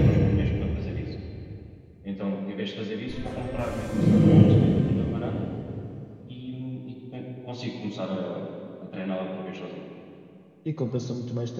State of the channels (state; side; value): identical; both; correlation 1.00